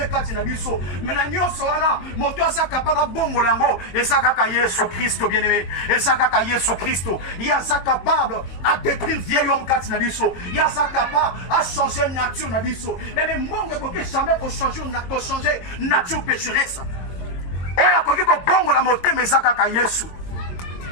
kati na biso. Mais na nyoso wana, moto asa capable bongo lango, et ça kaka Yesu Christo, bien-aimé, et ça kaka Yesu Christo. Il y a ça capable à détruire vieil homme kati na biso. Il y a ça capable à changer nature na biso. Mais mongo ko jamais ko changer nature pécheresse. Oya koki ko bongo la motema ezaka ka Yesu.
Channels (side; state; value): right; late; 22 ms